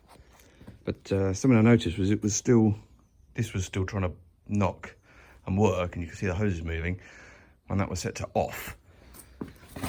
but something I noticed was this was still trying to knock and work, and you can see the hoses moving when that was set to off.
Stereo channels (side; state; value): both; identical; correlation 1.00